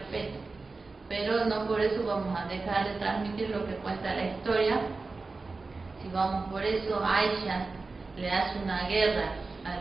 Pero no por eso vamos a dejar de transmitir lo que cuenta la historia. Si vamos por eso, Aisha le hace una guerra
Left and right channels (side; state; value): left; quieter; 3.8 dB